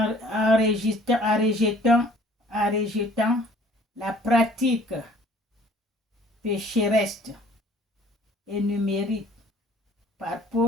rejetant la pratique pécheresse énumérée par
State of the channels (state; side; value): normal; both; correlation 0.54